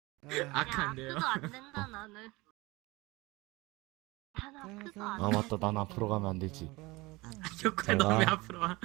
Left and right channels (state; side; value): quieter; left; 22.2 dB